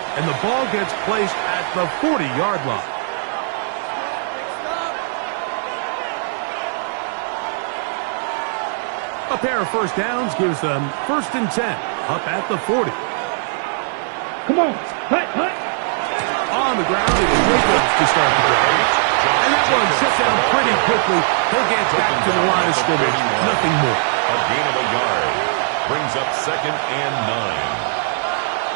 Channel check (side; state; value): left; silent; digital silence